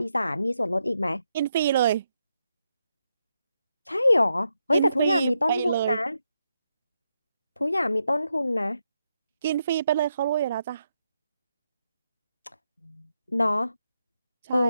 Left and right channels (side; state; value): both; inverted; correlation -0.83